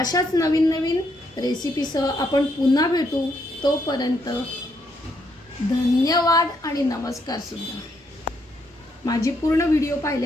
नवीन नवीन रेसिपीसह आपण पुन्हा भेटू. तोपर्यंत धन्यवाद आणि नमस्कार सुद्धा. माझी पूर्ण व्हिडिओ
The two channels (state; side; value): normal; both; correlation 0.75